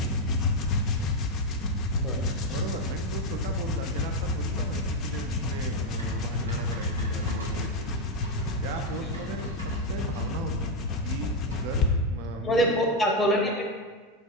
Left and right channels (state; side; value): normal; both; correlation 0.04